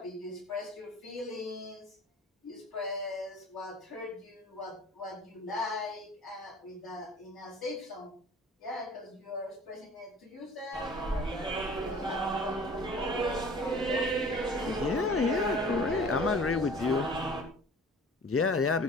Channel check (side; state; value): both; normal; correlation 0.45